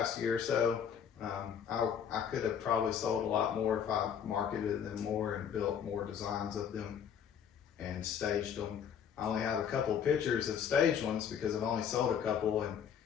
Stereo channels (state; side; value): quieter; right; 8.1 dB